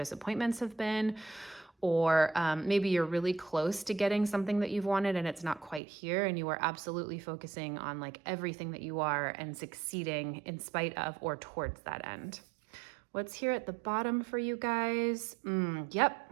have been, or maybe you're really close to getting something that you've wanted and it's not quite here, and you are absolutely focusing on like everything that you are and succeeding in spite of or towards that end. What's here at the bottom for you guys?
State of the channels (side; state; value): left; drops out; at 5.8 s